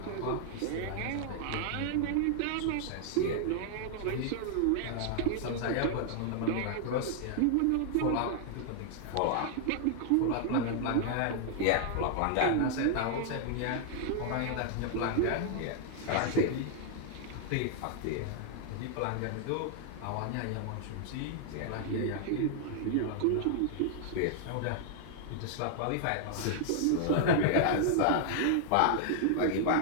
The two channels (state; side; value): different; both; correlation 0.00